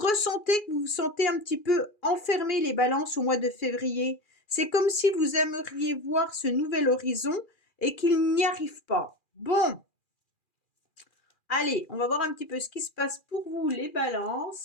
que vous vous sentez un petit peu enfermé, les balances, au mois de février. C'est comme si vous aimeriez voir ce nouvel horizon et qu'il n'y arrive pas. Bon, allez, on va voir un petit peu ce qui se passe pour vous, les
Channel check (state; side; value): late; right; 2.4 ms